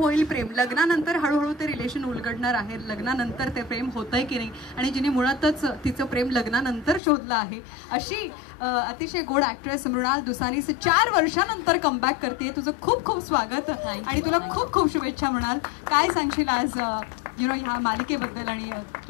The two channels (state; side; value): drops out; right; at 7.0 s